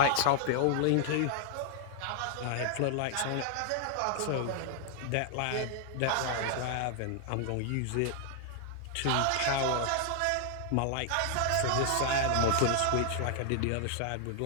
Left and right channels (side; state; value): both; different; correlation 0.00